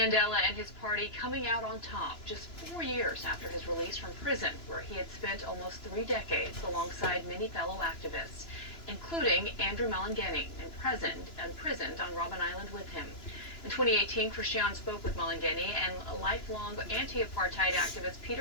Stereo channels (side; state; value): right; late; 2.9 ms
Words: and his party coming out on top just 4 years after his release from prison, where he had spent almost 3 decades alongside many fellow activists, including Andrew Malengeni, imprisoned on Robben Island with him. In 2018, Christian spoke with Malengeni and lifelong anti-apartheid activist